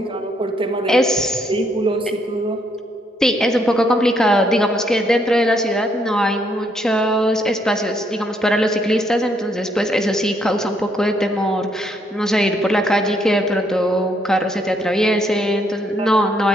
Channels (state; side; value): normal; both; correlation 0.72